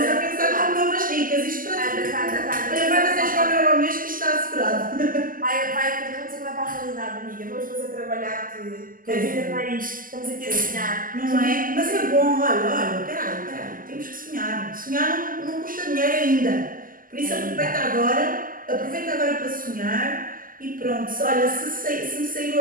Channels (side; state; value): left; late; 0.41 ms